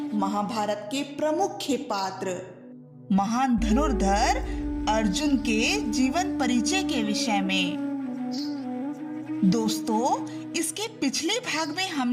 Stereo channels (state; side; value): identical; both; correlation 1.00